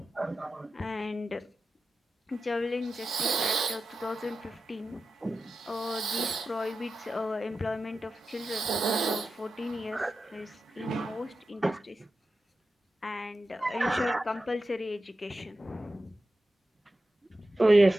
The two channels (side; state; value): both; normal; correlation 0.92